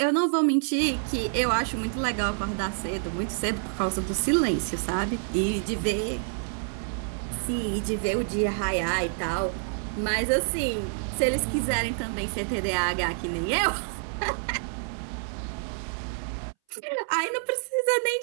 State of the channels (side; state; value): left; silent; 60 dB below the other